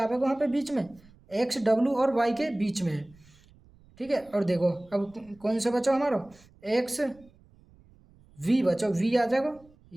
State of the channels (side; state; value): right; noise; rumble, 28 dB below the sound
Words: वहाँ पे बीच में, X W और Y के बीच में है, ठीक है। और देखो अब कौन सा बचा हमारा? X V बचा, V आ जाएगा